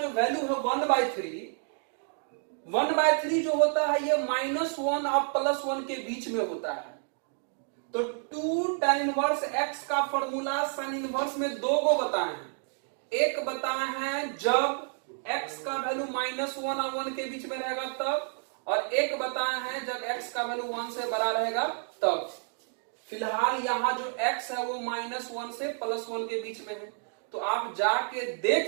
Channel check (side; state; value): left; silent; 55 dB below the other